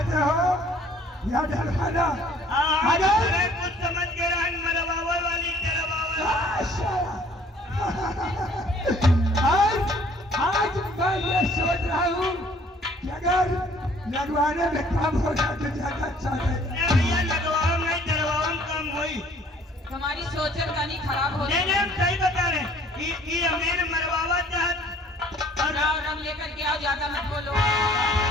हो या डलवाना? अरे कुछ समझ के रहन मरवावे वाली डलवावे। आज मैं ये सोच रहा हूँ कि अगर लगवाने में काम हो जाए तो ज्यादा अच्छा है। भैया लगवाओ नहीं डलवाओ कम होई। तुम्हारी सोचन कहीं खराब हो नहीं हम सही बता रहे। ये हमें मरवावा चाहत और आओ, रंग लेकर के आओ, ज्यादा मत बोलो।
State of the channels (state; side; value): normal; both; correlation 0.57